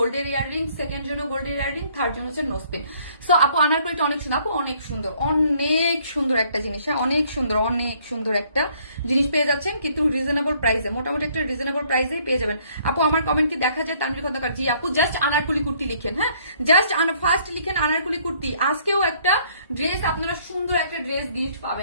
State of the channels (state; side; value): inverted; both; correlation -0.63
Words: ইয়াররিং, সেকেন্ড জন্য গোল্ডের ইয়াররিং, থার্ড জন্য হচ্ছে নোসপিন। সো আপু আনারকলিটা অনেক সুন্দর, আপু অনেক সুন্দর, অনেক সুন্দর একটা জিনিস, হ্যাঁ, অনেক সুন্দর একটা জিনিস পেয়ে যাচ্ছেন, কিন্তু রিজনেবল প্রাইসে, মোটামুটি একটা রিজনেবল প্রাইসে পেয়ে যাবেন। আপু আমার কমেন্ট কি দেখা যায়? তানভীর খন্দকার, জি আপু, জাস্ট আনারকলি কুর্তি লিখেন, হ্যাঁ, জাস্ট ফার্স্ট লিখেন আনারকলি কুর্তি। আজকেও একটা ড্রেস, আপনারা সুন্দর একটা ড্রেস গিফট